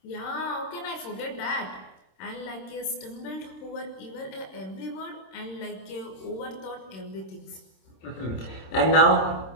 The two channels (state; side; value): late; right; 26 ms